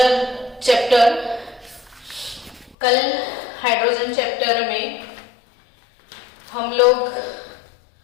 chapter. कल hydrogen chapter में हम लोग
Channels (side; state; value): right; drops out; at 2.8 s